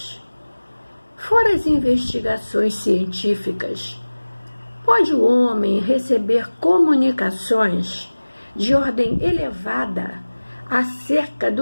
fora as investigações científicas, pode o homem receber comunicações de ordem elevada acerca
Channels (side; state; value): both; inverted; correlation -1.00